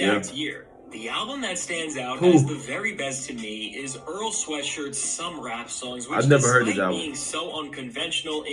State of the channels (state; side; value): identical; both; correlation 1.00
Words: year, the album that stands out Who? as the very best to me is Earl Sweatshirt's Some Rap Songs, which I've never heard this despite album. being so unconventional